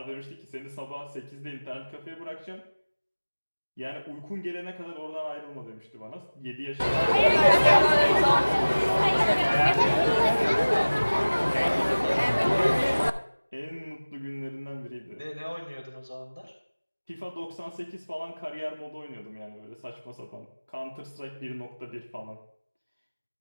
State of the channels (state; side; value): inverted; both; correlation -1.00